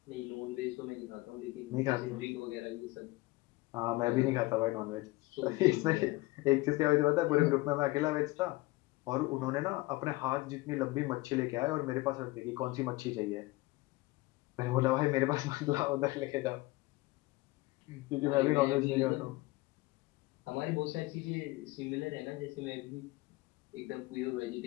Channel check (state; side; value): quieter; right; 21.2 dB